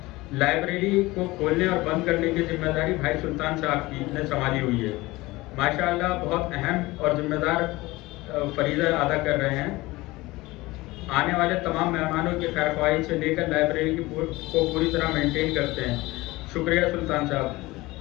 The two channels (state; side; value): quieter; right; 20.4 dB